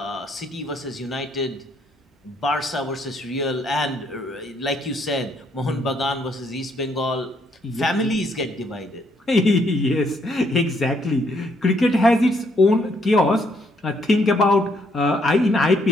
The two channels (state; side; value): normal; both; correlation 0.71